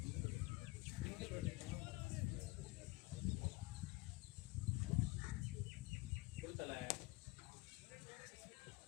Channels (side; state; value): right; quieter; 23.0 dB